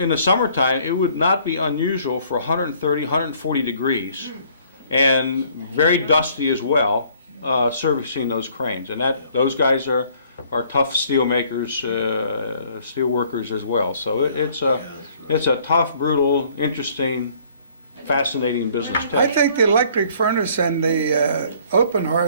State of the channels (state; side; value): inverted; both; correlation -0.59